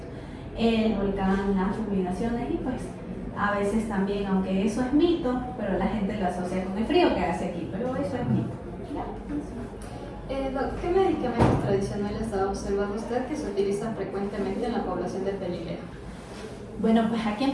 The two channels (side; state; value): both; identical; correlation 1.00